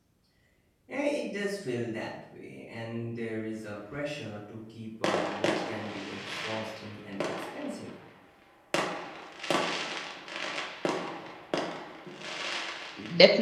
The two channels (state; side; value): identical; both; correlation 1.00